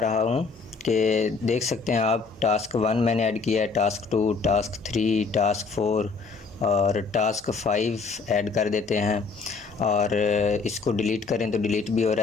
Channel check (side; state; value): right; quieter; 4.6 dB